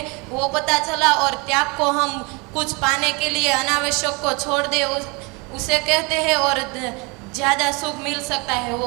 वो पता चला। और त्याग को हम कुछ पाने के लिए अनावश्यक को छोड़ दे उसे कहते हैं, और ज़्यादा सुख मिल सकता है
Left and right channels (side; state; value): left; quieter; 28.9 dB